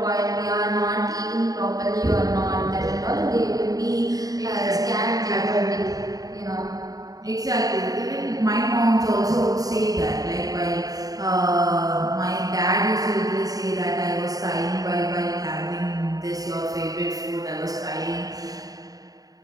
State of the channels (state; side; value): late; left; 0.18 ms